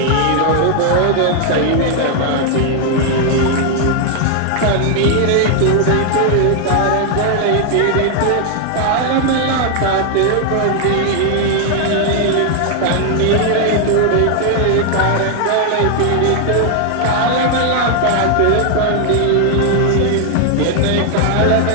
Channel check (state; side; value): different; both; correlation 0.00